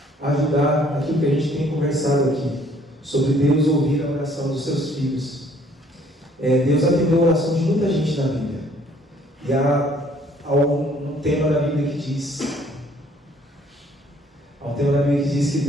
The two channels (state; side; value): normal; both; correlation 0.61